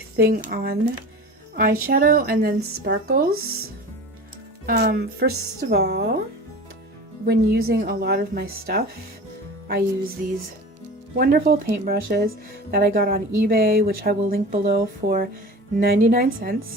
on eyeshadow and then sparkles. First of all, when using a lot of my stuff, I use these wonderful paintbrushes that I got on eBay, which I will link below, for 99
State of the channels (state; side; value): normal; both; correlation 0.36